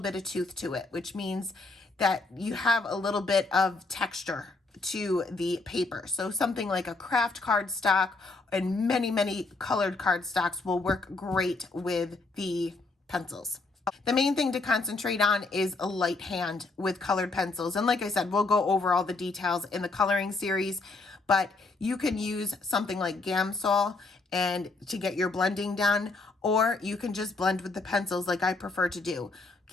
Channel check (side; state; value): right; quieter; 3.5 dB